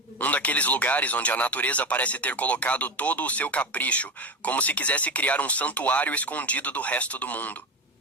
Um daqueles lugares onde a natureza parece ter colocado todo o seu capricho, como se quisesse criar um santuário escondido do resto do mundo.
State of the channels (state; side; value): normal; both; correlation 0.20